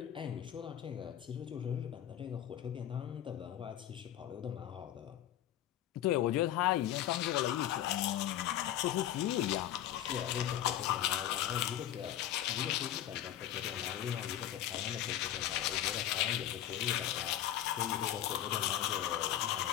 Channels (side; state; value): right; quieter; 11.8 dB